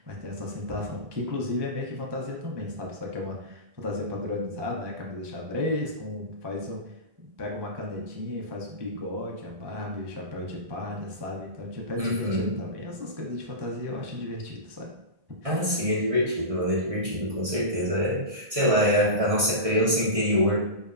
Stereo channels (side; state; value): left; late; 1.6 ms